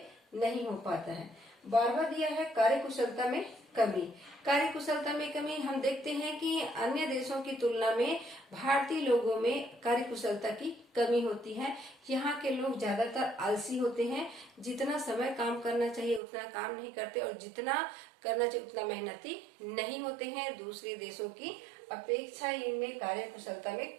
नहीं हो पाता है। 12वां दिया है कार्यकुशलता में कमी। कार्यकुशलता में कमी हम देखते हैं कि अन्य देशों की तुलना में भारतीय लोगों में कार्यकुशलता की कमी होती है। यहाँ के लोग ज्यादातर आलसी होते हैं, जितना समय काम करना चाहिए उतना काम नहीं करते, और जितना करना चाहिए उतना मेहनती नहीं होते हैं। दूसरे देशों की अपेक्षा इनमें कार्यकुशलता में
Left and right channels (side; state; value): left; drops out; at 16.2 s